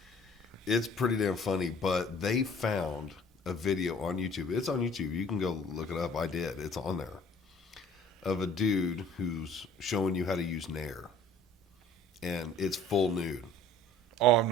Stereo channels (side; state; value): both; normal; correlation 0.51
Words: it's pretty damn funny, but they found a video on YouTube. It's on YouTube. You can go look it up. I did. It's on there. Of a dude who's showing you how to use Nair. And it's full nude. Oh, I'm